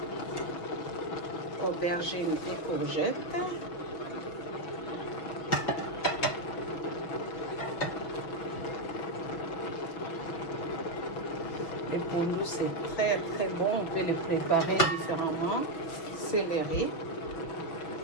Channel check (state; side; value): late; right; 6.2 ms